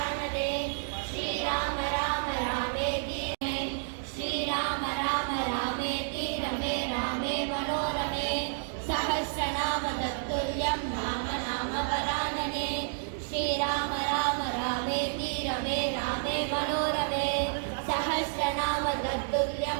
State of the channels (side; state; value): left; silent; digital silence